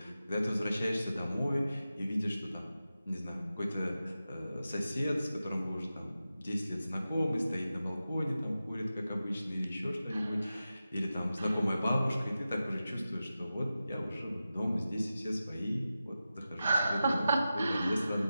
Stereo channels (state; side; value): inverted; both; correlation -0.93